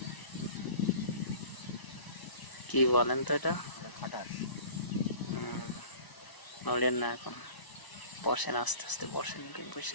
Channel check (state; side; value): late; right; 1.0 ms